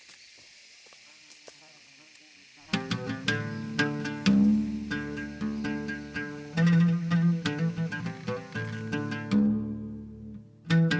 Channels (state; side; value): identical; both; correlation 1.00